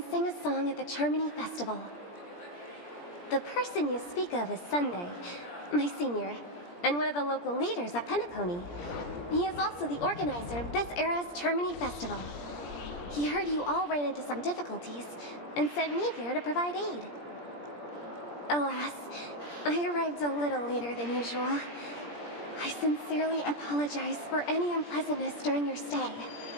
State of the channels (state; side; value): late; right; 17 ms